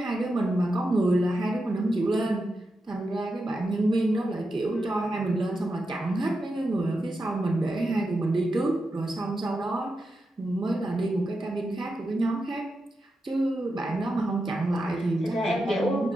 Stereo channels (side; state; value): both; normal; correlation 0.88